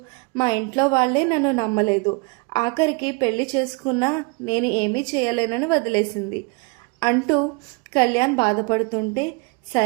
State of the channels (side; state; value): left; quieter; 29.1 dB